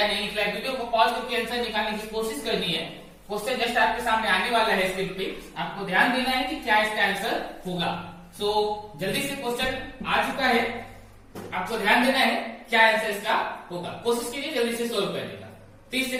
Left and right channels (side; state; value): both; identical; correlation 1.00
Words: नहीं निकला है। वीडियो को पॉज करके आंसर निकालने की कोशिश करनी है। क्वेश्चन जस्ट आपके सामने आने वाला है स्क्रीन पे, आपको ध्यान देना है कि क्या इसका आंसर होगा। सो जल्दी से क्वेश्चन आ चुका है, आपको ध्यान देना है क्या आंसर इसका होगा। कोशिश कीजिए जल्दी से सोल्व करने का। 30